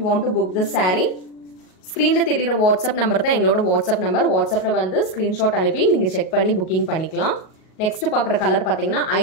want to book this saree. Screen la theriyra WhatsApp number தான் எங்களோட WhatsApp number. WhatsAppல வந்து screenshot அனுப்பி நீங்க check பண்ணி booking பண்ணிக்கலாம். Next பார்க்குற colour பார்த்தீங்கன்னா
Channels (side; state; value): right; late; 38 ms